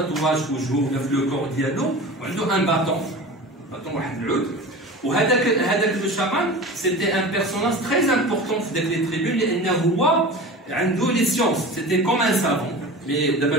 في وجهه ولا في لو كور ديالو وعنده ان باطون واحد العود. وهذاك لو شامان سيتي ان بيرسوناج تري امبورطون في داك لي تريبون لانه هو عنده لي سيونس سيتي كوم ان سافون. مي دابا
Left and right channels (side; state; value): both; normal; correlation 0.34